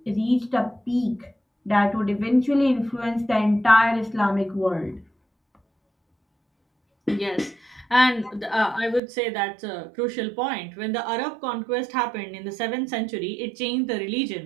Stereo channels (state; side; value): drops out; left; at 9.0 s